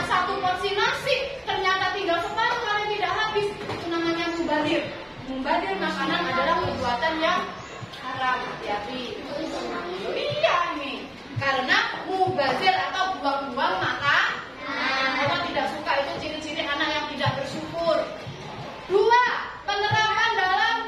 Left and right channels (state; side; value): identical; both; correlation 1.00